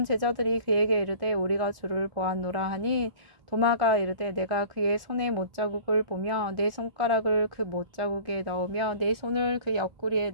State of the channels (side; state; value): left; late; 1.5 ms